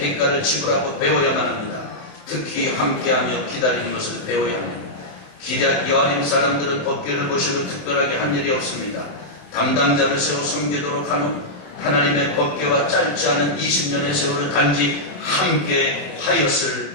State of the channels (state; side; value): late; right; 27 ms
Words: 지불하고 배워야만 합니다. 특히 함께하며 기다리는 것을 배워야 합니다. 기럇 여아림 사람들은 법궤를 보시고 특별하게 한 일이 없습니다. 담당자를 세워 섬기도록 한 후 하나님의 법궤와 짧지 않은 20년의 세월을 단지 함께 하였을